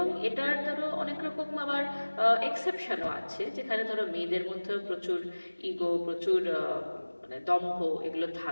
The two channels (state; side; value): inverted; both; correlation -1.00